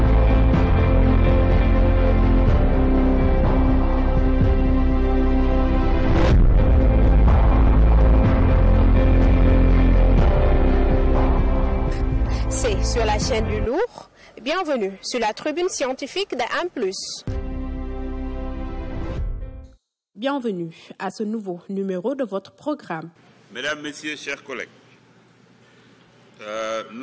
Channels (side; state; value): both; identical; correlation 1.00